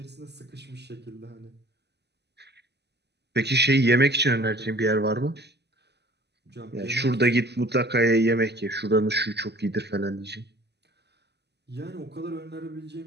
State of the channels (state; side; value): late; left; 0.49 ms